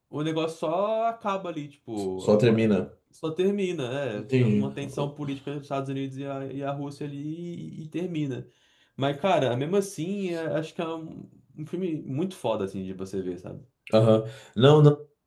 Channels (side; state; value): both; identical; correlation 1.00